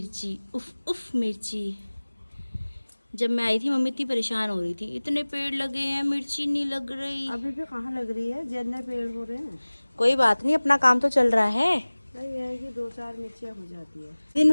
उफ उफ मिर्ची। जब मैं आई थी मम्मी इतनी परेशान हो रही थी, इतने पेड़ लगे हैं मिर्ची नहीं लग रही। अभी भी कहाँ लग रही है, जितने पेड़ हो रहे हैं। कोई बात नहीं, अपना काम तो चल रहा है। ये है कि 2-4 मिर्चियाँ हो जाती है। दिन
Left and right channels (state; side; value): inverted; both; correlation -1.00